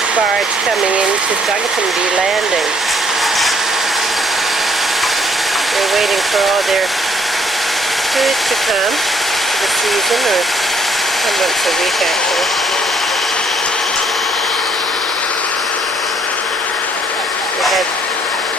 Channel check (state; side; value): normal; both; correlation 0.65